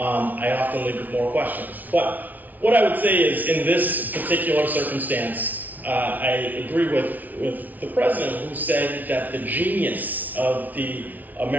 often leave with more questions. But what I would say is, in this particular circumstance, I agree with the president, who said that the genius of the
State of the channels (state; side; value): late; left; 0.078 ms